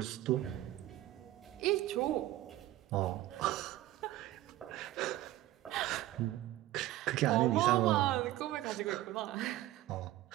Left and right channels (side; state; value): left; quieter; 15.3 dB